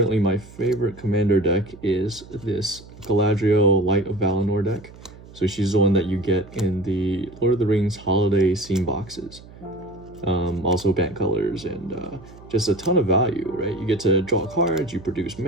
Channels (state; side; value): noise; right; hum, 20 dB below the sound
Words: my favorite commander deck is this Galadriel Light of Valinor deck. So she's the one that you get in the Lord of the Rings holiday scene boxes. Also banned colors and just a ton of value, right? You get to draw cards, you produce